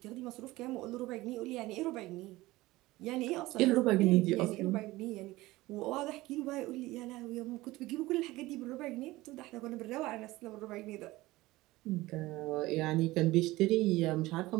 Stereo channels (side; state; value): left; quieter; 18.9 dB